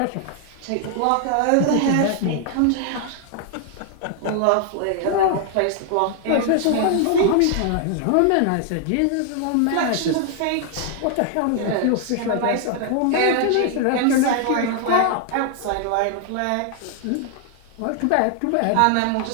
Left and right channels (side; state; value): both; different; correlation 0.00